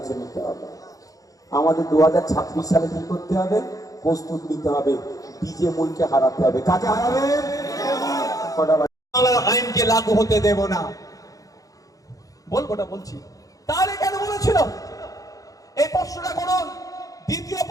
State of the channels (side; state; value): right; late; 0.17 ms